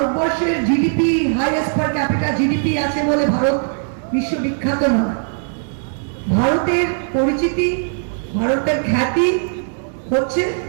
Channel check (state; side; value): silent; left; digital silence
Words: জিডিপি হাইয়েস্ট পার ক্যাপিটা জিডিপি আছে বলে ভারত বিশ্ববিখ্যাত নয়। ভারতের পরিচিতি, ভারতের খ্যাতি হচ্ছে